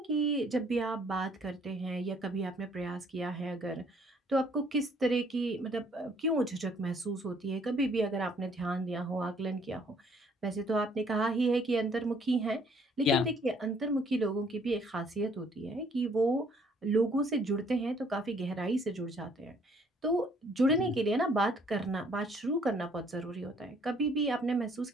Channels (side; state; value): both; normal; correlation 0.62